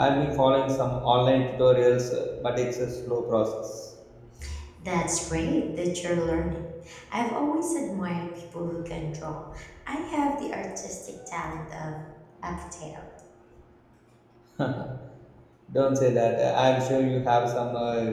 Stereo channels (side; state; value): both; identical; correlation 1.00